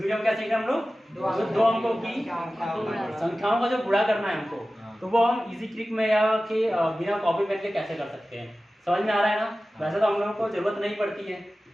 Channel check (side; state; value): both; normal; correlation 0.96